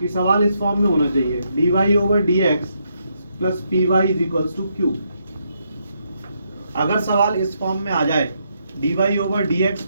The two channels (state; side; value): inverted; both; correlation -0.78